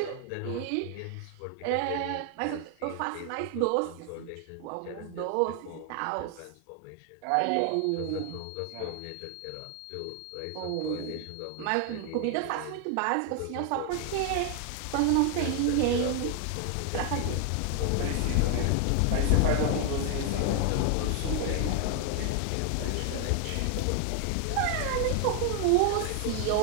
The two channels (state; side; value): different; both; correlation 0.00